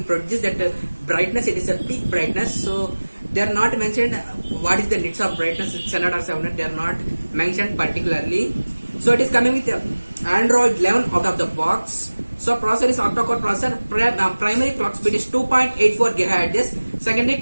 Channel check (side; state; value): both; inverted; correlation -1.00